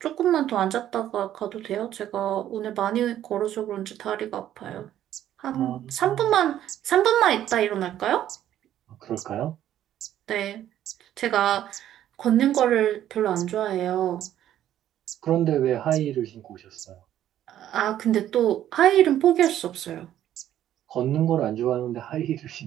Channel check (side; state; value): left; quieter; 11.7 dB